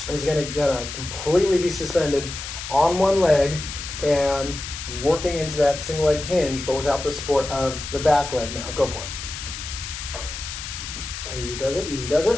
is going to completely be suspended on one leg and working into that single leg hinge, but without the support of the back leg. Now, go for it. Easy does it, easy does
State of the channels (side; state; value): left; noise; hiss, 8 dB below the sound